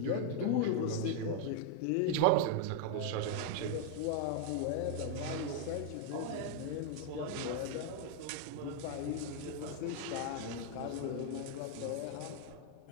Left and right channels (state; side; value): different; both; correlation 0.00